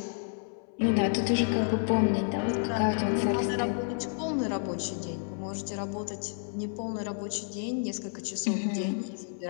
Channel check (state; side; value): silent; right; 58 dB below the other